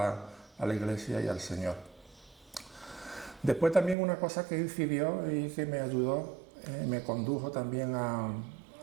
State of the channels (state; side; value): drops out; left; at 4.0 s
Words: la Iglesia y al Señor. Después también una cosa que incidió y que me ayudó, me condujo también a